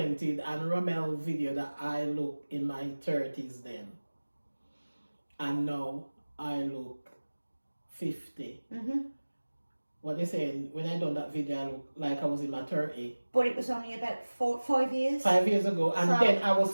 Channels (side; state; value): both; inverted; correlation -1.00